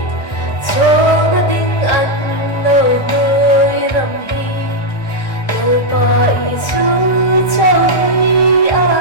cho nó tiếng anh nó tươi rằm hi lời bài chú cho đi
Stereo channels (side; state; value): right; late; 1.4 ms